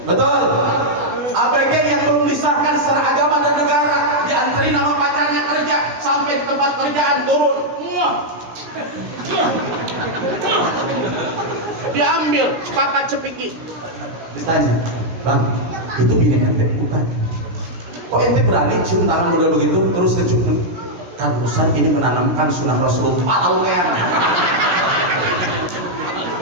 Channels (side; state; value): left; late; 16 ms